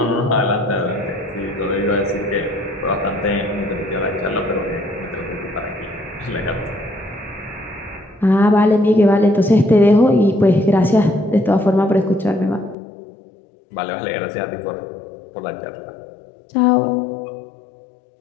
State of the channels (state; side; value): drops out; right; at 12.8 s